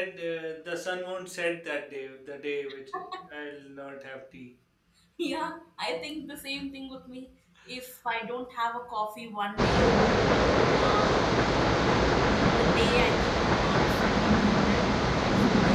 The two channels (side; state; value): both; identical; correlation 1.00